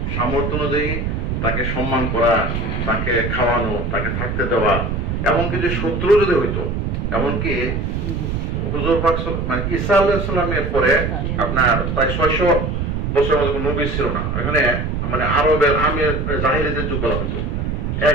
সামর্থ্য অনুযায়ী তাকে সম্মান করা, তাকে খাওয়ানো, তাকে থাকতে দেওয়া। এমনকি যে শত্রু যদি হইতো, এমনকি হুজুর পাক ঈসা আলাইহিস সালামের পরে আপনার প্রায় 600 বছর নবী ছিল না। এখানে আরবের আমের জাহিলিদের যুগ বলা হতো।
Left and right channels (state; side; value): noise; right; rumble, 1 dB below the sound